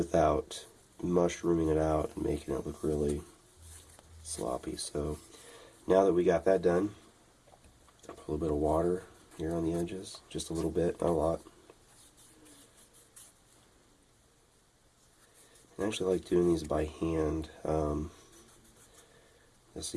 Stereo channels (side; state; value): both; identical; correlation 1.00